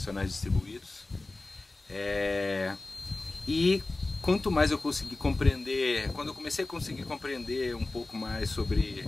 distribuídos. E quanto mais eu consegui compreender, quando eu comecei a conseguir compreender um pouco mais sobre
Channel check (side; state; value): right; quieter; 3.1 dB